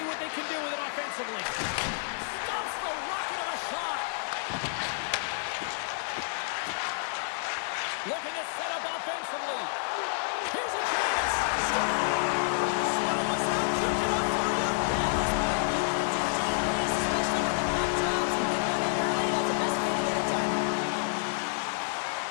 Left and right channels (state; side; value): silent; right; 58 dB below the other